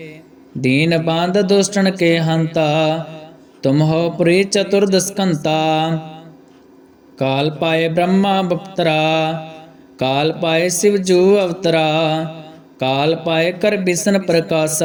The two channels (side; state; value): both; identical; correlation 1.00